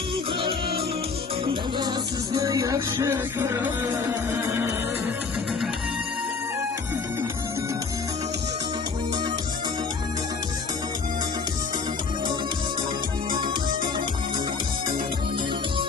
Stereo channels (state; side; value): quieter; right; 4.8 dB